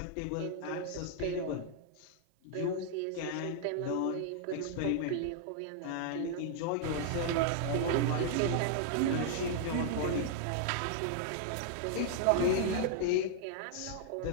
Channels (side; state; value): both; different; correlation -0.01